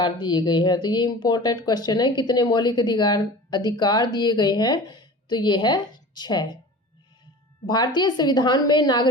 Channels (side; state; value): both; normal; correlation 0.38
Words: दिए गए हैं? तो ये इंपॉर्टेंट क्वेश्चन है, कितने मौलिक अधिकार दिए गए हैं? तो ये है 6। भारतीय संविधान में